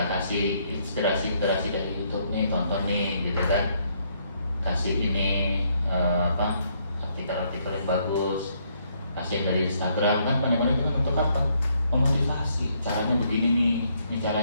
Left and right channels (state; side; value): inverted; both; correlation -0.71